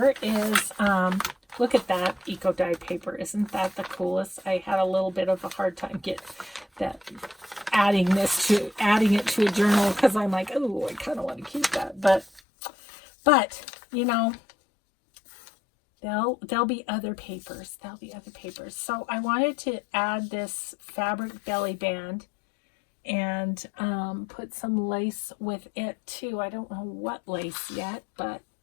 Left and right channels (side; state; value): right; drops out; at 12.4 s